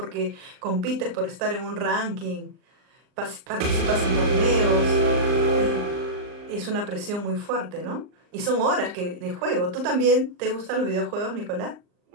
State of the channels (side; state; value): left; late; 39 ms